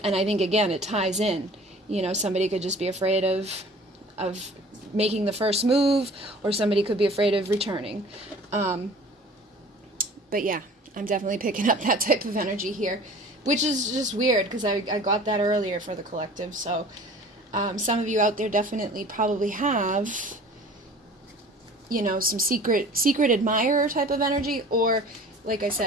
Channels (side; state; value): both; normal; correlation 0.45